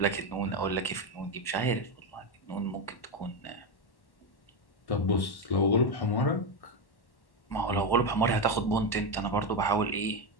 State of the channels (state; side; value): late; right; 1.1 ms